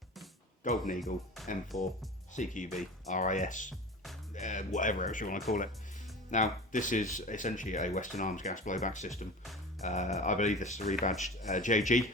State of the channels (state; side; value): normal; both; correlation 0.35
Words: Golden Eagle M4 CQB RIS, whatever else you want to call it. Now this is essentially a Western Arms gas blowback system. I believe this is a rebadged JG,